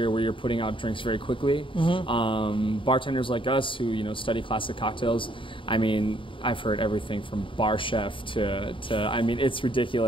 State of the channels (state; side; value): late; right; 0.25 ms